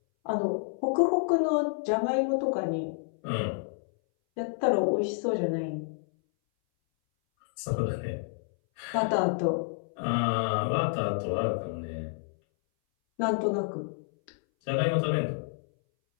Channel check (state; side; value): silent; right; 58 dB below the other